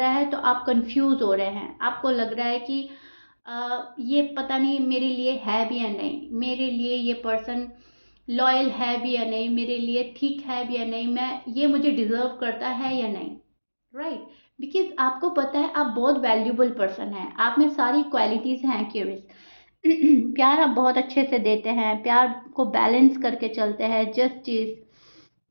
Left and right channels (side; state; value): both; inverted; correlation -1.00